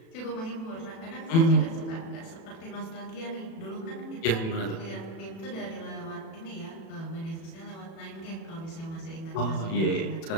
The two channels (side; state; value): right; late; 36 ms